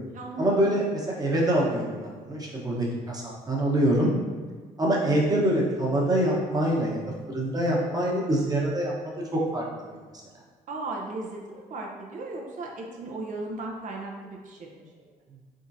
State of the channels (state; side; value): normal; both; correlation 0.56